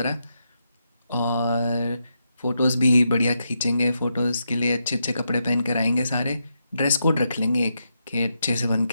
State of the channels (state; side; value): inverted; both; correlation -0.83